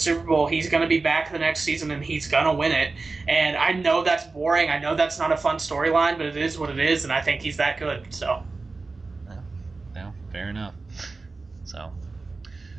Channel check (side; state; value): left; quieter; 3.8 dB